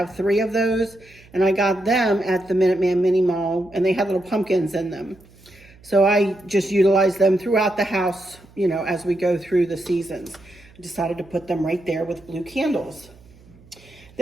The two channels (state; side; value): noise; right; hum, 26 dB below the sound